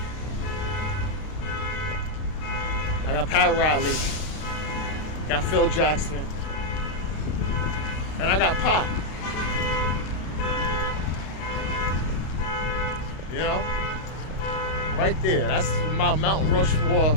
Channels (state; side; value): late; right; 32 ms